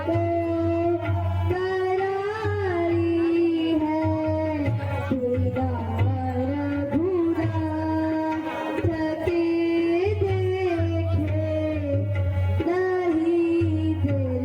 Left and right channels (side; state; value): both; identical; correlation 1.00